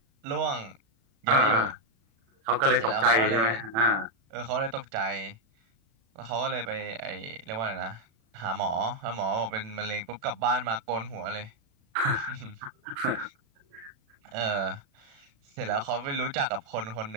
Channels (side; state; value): left; late; 36 ms